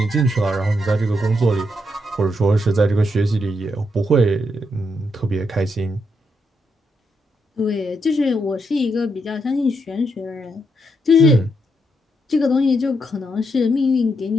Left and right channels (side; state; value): both; normal; correlation 0.80